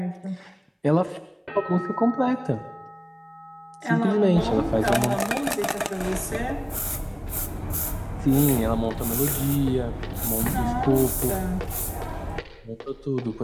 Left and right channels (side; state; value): both; identical; correlation 1.00